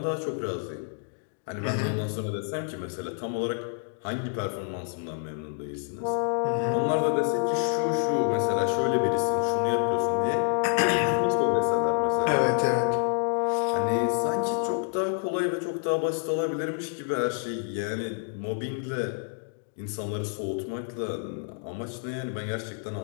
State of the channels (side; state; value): right; silent; digital silence